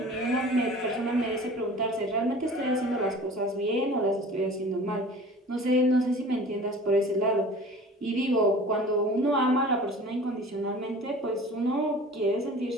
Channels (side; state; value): both; normal; correlation 0.43